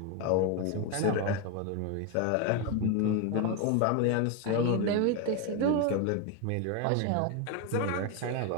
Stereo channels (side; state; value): both; different; correlation 0.02